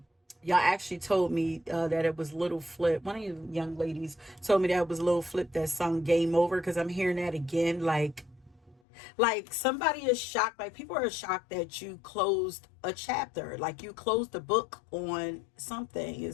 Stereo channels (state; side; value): drops out; right; at 8.8 s